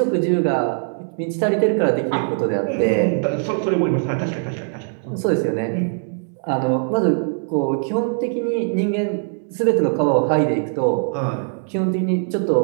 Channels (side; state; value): left; silent; 65 dB below the other